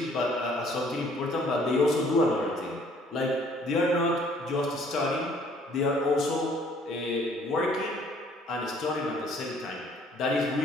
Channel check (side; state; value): both; normal; correlation 0.60